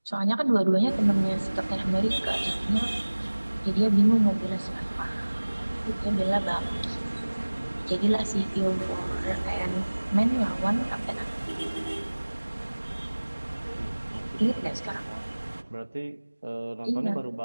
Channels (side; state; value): both; inverted; correlation -1.00